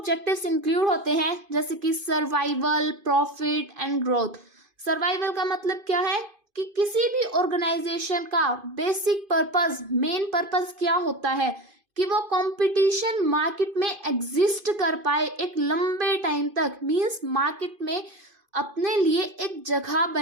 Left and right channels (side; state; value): left; late; 2.5 ms